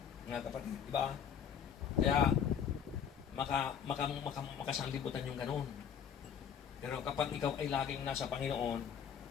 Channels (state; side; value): quieter; right; 8.2 dB